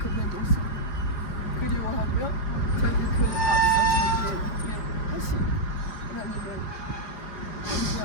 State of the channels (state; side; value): late; right; 4.9 ms